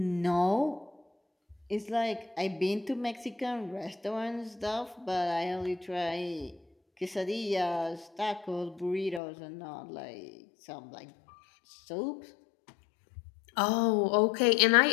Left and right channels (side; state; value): right; drops out; at 9.2 s